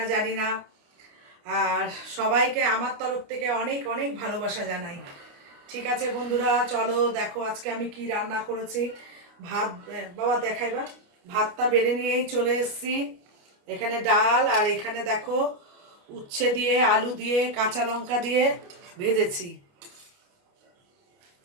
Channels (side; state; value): left; late; 29 ms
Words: জানি না। আর সবাইকে আমার তরফ থেকে অনেক অনেক ভালোবাসা জানাই। ঠিক আছে বন্ধুরা, চলো দেখো আজকে আমি কি রান্না করেছি। ভাত বাবা দেখাইবা। ভাতটা বেড়ে নিয়েই চলে এসেছি। এখানে ডাল আর এখানে দেখো উচ্ছে দিয়ে আলু দিয়ে কাঁচা লঙ্কা দিয়ে ভেজেছি।